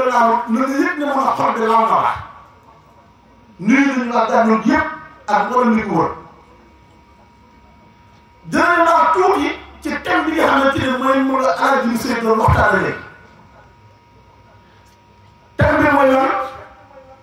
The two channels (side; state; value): both; identical; correlation 1.00